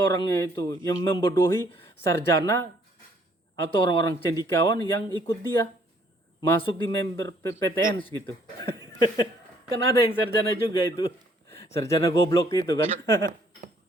itu yang membodohi sarjana atau orang-orang cendekiawan yang ikut dia masuk di member PTN gitu. Kan ada yang sarjana juga itu. Sarjana goblok itu kan.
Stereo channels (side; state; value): both; normal; correlation 0.64